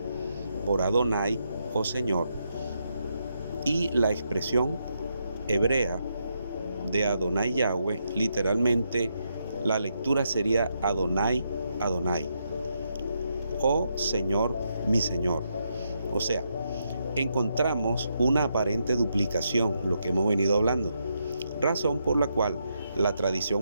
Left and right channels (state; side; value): inverted; both; correlation -0.81